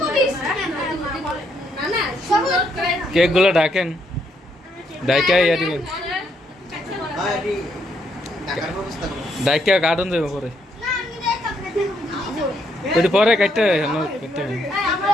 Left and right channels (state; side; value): normal; both; correlation 0.74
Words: প্লিজ না না কেক গুলো ডাকেন ডাইকা ইয়া দিবেন ডাইকা কাটুন দেব পরে ওই পরে কাটতে কাটতে